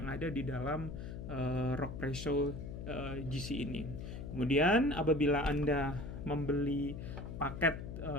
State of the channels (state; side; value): noise; left; hum, 8 dB below the sound